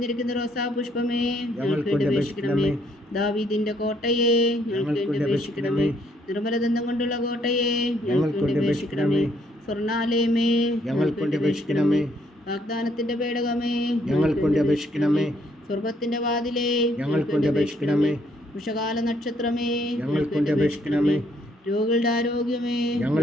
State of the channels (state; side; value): normal; both; correlation 0.69